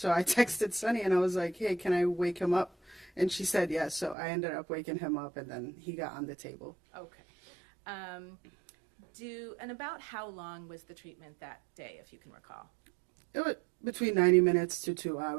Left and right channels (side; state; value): left; drops out; at 4.2 s